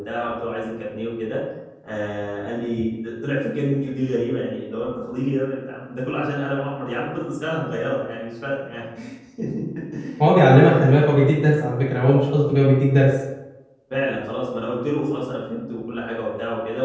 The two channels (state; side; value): identical; both; correlation 1.00